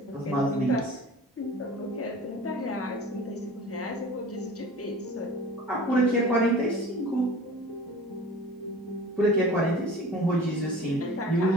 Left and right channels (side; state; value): both; normal; correlation 0.41